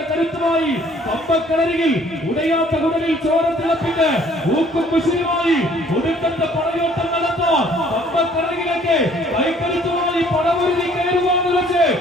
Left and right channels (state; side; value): normal; both; correlation 0.58